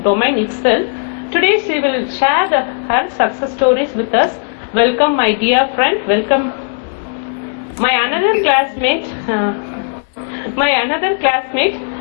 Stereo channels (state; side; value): silent; right; digital silence